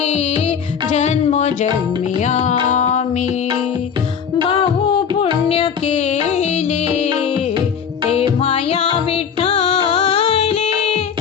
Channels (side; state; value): right; quieter; 7.3 dB